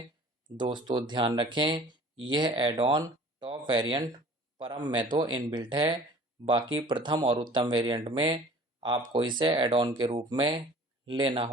दोस्तों ध्यान रखें यह एड ऑन टॉप वेरिएंट परम में तो इनबिल्ट है, बाकी प्रथम और उत्तम वेरिएंट में आपको इसे एड ऑन के रूप में लेना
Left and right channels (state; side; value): normal; both; correlation 0.47